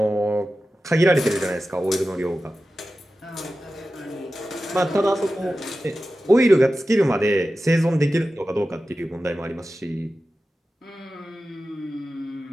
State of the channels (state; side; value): normal; both; correlation 0.94